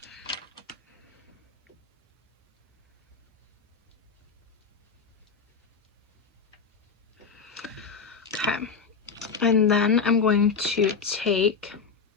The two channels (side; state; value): right; quieter; 5.5 dB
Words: Okay, and then I'm going to take,